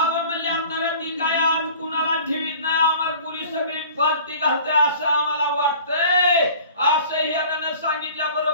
म्हणले आपल्याला ती काय आज कुणाला ठेवीत नाही, आम्हाला पुरी सगळी फालती घालते असं आम्हाला वाटतंय. असं हिरानं सांगितल्या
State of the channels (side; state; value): both; inverted; correlation -0.45